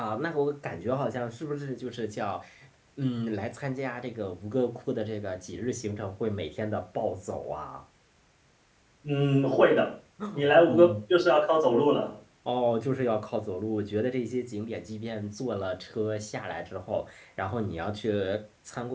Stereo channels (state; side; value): identical; both; correlation 1.00